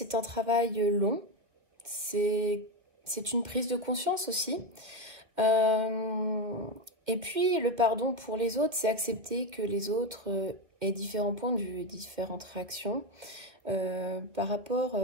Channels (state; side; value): late; left; 2.3 ms